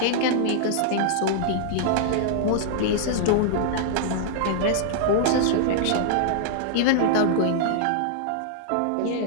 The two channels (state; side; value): different; both; correlation -0.01